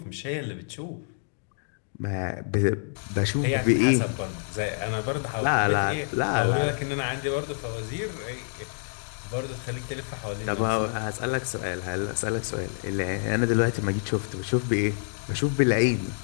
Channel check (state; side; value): silent; right; digital silence